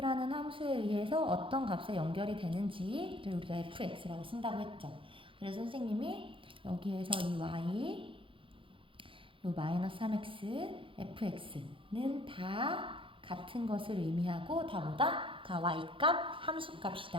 함수에 의해서 어떤 값에 연결이 되는지를 우리가 fx라고 쓴다고 했죠. 그래서 선생님이 여기에서 이 y, 요 마이너스 3x, fx는 다 같은 것을 의미하고 다 뭐다? 다 y값,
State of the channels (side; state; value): left; late; 0.25 ms